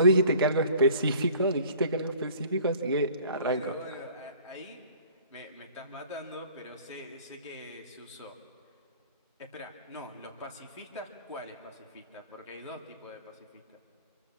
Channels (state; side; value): inverted; both; correlation -0.50